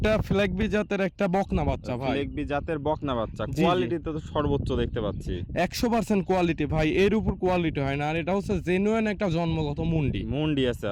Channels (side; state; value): both; identical; correlation 1.00